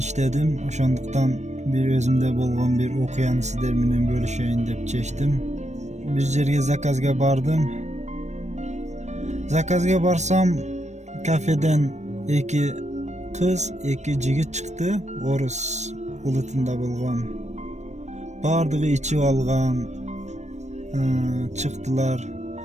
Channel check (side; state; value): left; late; 0.34 ms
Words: Oşonduktan bir özümde bolgan bir okuyany sizler menen bölüşeyin dep çeştim. Bir jerge zakazga bardım. Zakazga barsam kafeden iki kız, iki jigit çıktı. Orus ulutunda bolgan. Bardığı içip algan. Çıktılar,